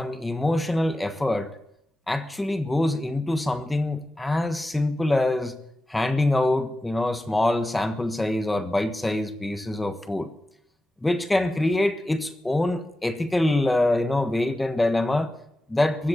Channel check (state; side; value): normal; both; correlation 0.93